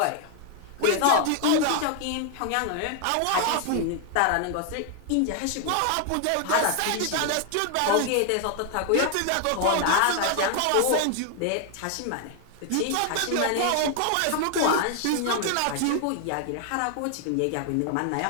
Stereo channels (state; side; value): different; both; correlation 0.00